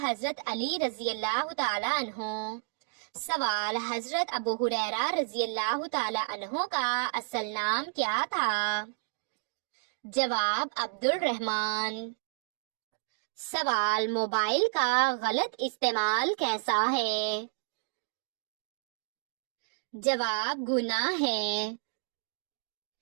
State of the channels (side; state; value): left; silent; digital silence